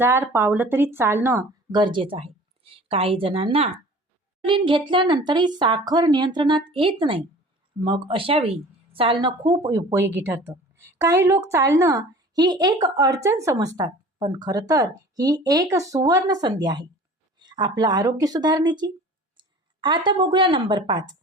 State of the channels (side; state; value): both; normal; correlation 0.44